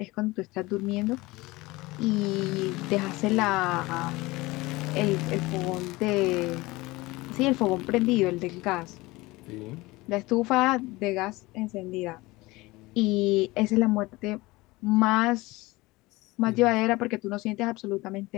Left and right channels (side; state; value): right; quieter; 21.2 dB